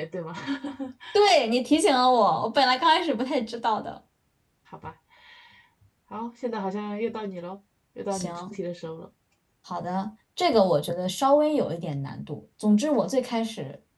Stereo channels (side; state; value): both; identical; correlation 1.00